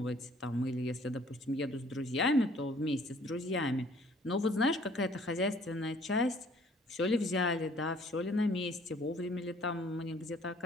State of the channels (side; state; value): both; normal; correlation 0.58